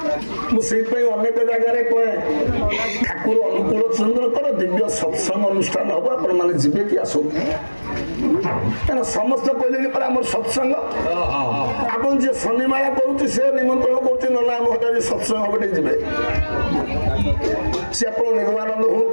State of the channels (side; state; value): both; inverted; correlation -1.00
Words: ମୁଁ ସେଇଥିପାଇଁ ଅନେକ ଜାଗାରେ କହେ ଠାକୁର ଅନୁକୂଳ ଚନ୍ଦ୍ରଙ୍କର ଦିବ୍ୟ ସତ୍ସଙ୍ଗ ଅନୁଷ୍ଠାନ ହବ, ଆପଣ ମାନେ ଯିବେ କି ଆସନ୍ତୁ? କାରଣ ସମସ୍ତେ କହିଲେଣି ପରେ ଆମର ସତ୍ସଙ୍ଗ। ଆପଣ ଯିଏ ଶନିମାଳା କରୁଛି ସେ ନିମନ୍ତ୍ରଣ କରୁଛି ନହେଲେ ଆମ ହଠାତ୍ ସତ୍ସଙ୍ଗ ହବ ଟିକେ ଯିବେ। ସେ ଆପଣ ନିର୍ବାନନ୍ଦ